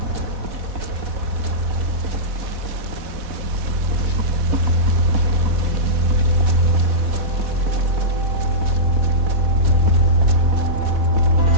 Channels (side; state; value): left; late; 4.1 ms